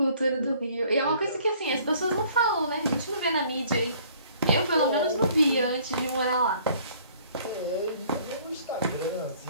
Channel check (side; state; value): both; inverted; correlation -0.57